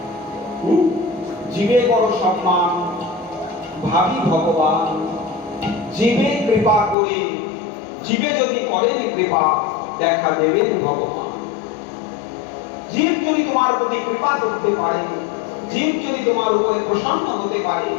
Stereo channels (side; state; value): right; drops out; at 7.0 s